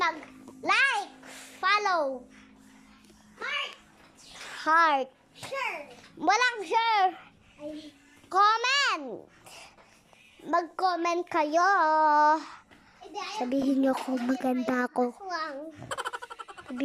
mag-like, follow, heart, share. Walang share. Comment! Mag-comment kayo. Sabihin niyo kung maganda ako.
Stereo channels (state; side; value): identical; both; correlation 1.00